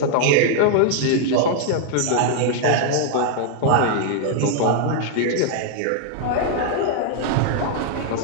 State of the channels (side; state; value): both; different; correlation -0.01